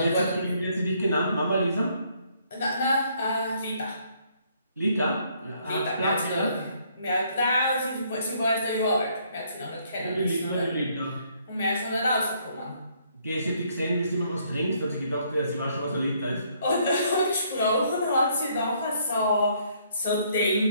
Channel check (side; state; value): both; inverted; correlation -0.68